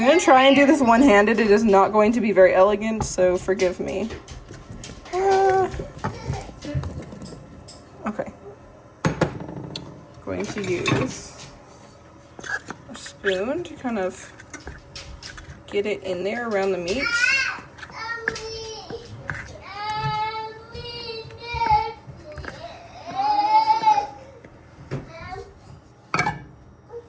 I'm gonna try and do this one-handed. It is not going to be very elegant, so forgive me. Okay. Going to use a spoon to kind of get it in there around the meat.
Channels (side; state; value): both; identical; correlation 1.00